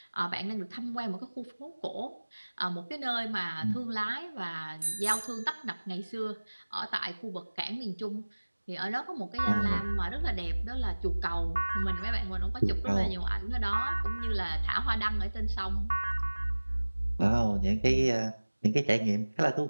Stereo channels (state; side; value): inverted; both; correlation -1.00